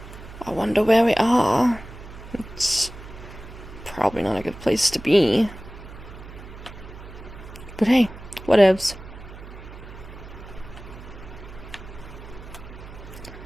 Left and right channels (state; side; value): noise; right; hum, 15 dB below the sound